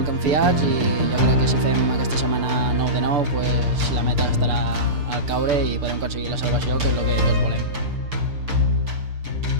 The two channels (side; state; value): left; late; 6.8 ms